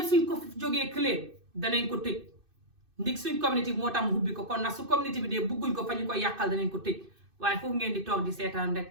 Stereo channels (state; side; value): late; left; 2.6 ms